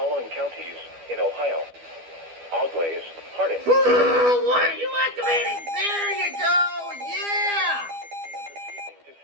counties in Ohio: Auglaize, Hardin. What are you activating? There you go! Yeah! 6 p.m. this evening to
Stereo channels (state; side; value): late; left; 12 ms